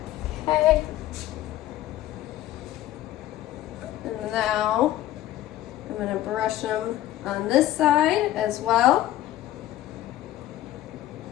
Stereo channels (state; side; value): quieter; right; 13.7 dB